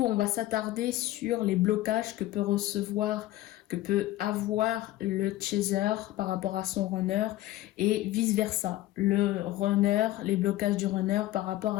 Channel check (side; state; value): right; quieter; 15.7 dB